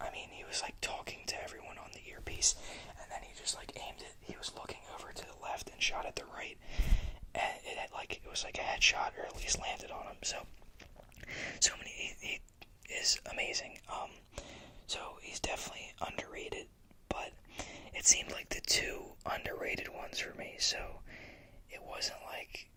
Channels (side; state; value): both; identical; correlation 1.00